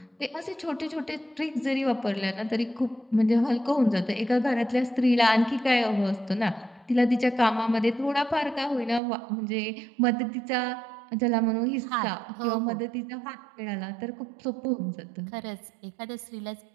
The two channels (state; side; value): drops out; left; at 9.0 s